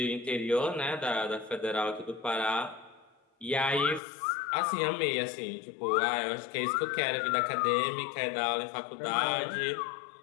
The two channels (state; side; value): drops out; right; at 4.0 s